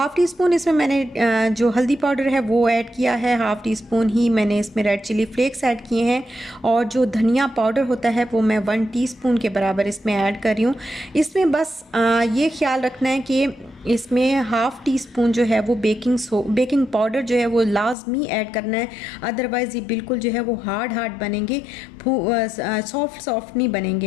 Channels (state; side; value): drops out; right; at 17.9 s